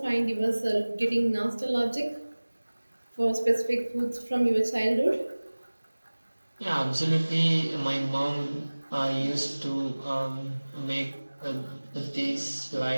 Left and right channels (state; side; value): inverted; both; correlation -1.00